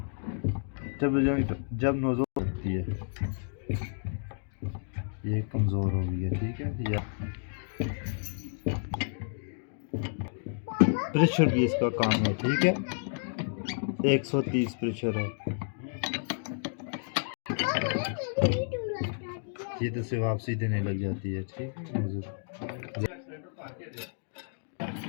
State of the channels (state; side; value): silent; right; digital silence